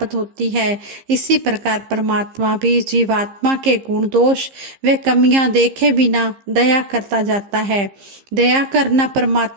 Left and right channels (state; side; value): late; left; 15 ms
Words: होती है। इसी प्रकार परमात्मा भी जीवात्मा के गुण दोष व कमियां देखे बिना दया करता जाता है। दया करना